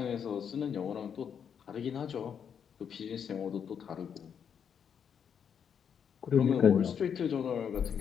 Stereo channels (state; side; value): quieter; right; 7.7 dB